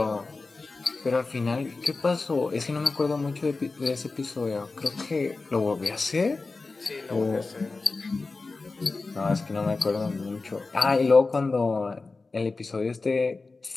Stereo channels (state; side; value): quieter; right; 3.8 dB